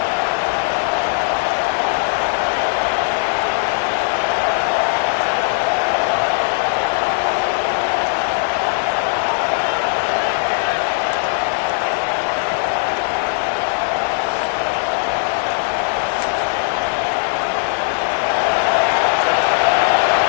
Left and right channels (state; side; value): silent; right; digital silence